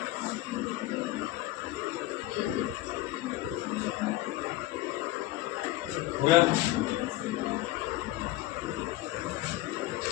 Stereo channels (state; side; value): quieter; right; 17.0 dB